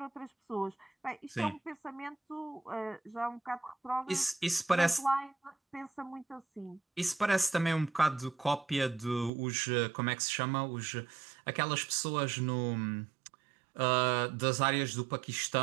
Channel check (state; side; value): drops out; left; at 9.3 s